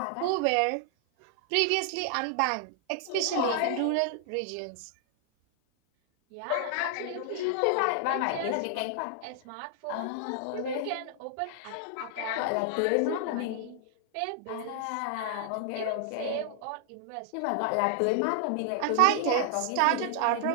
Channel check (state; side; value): different; both; correlation 0.00